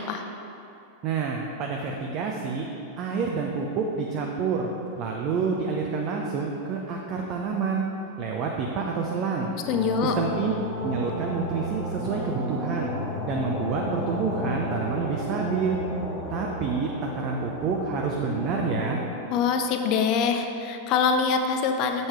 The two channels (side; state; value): both; normal; correlation 0.08